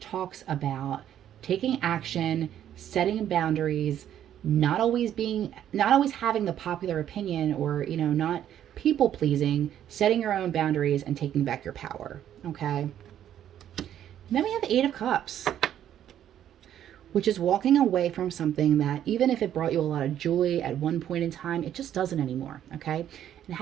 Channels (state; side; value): quieter; left; 10.7 dB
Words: talks about taking action, setting boundaries, not always having the popular opinion, or, you know, not people pleasing, setting your own boundaries and taking back your power, okay? And then we have the Eight of Cups, which is walking away from something that, even if it brought you a lot of joy at one point in time, it just doesn't anymore, okay? And